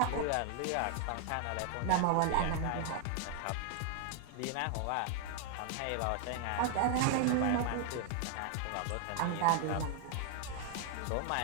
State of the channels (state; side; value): different; both; correlation 0.00